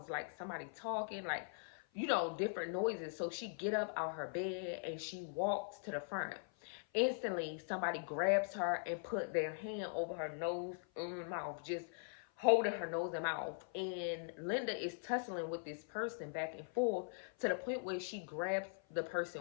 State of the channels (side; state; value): right; silent; 50 dB below the other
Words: like somebody talking, like, different noises. So she get up out her bed and she walks to the front. Instantly, somebody grabs her and put their hand over her nose and mouth, just holding her nose and mouth. And Linda is tussling with this person back and forth to the point where she grabs the